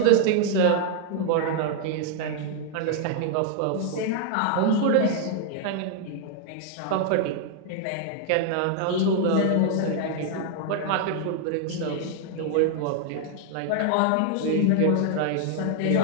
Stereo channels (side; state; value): both; different; correlation 0.00